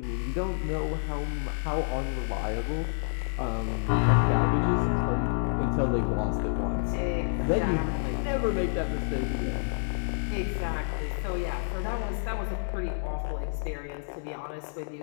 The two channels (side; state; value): right; silent; digital silence